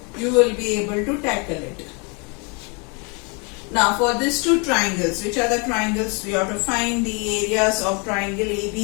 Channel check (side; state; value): right; quieter; 32.8 dB